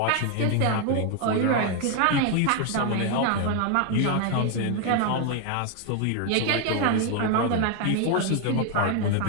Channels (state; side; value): different; both; correlation 0.01